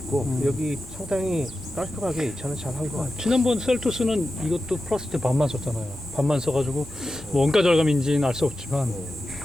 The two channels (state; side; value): normal; both; correlation 0.92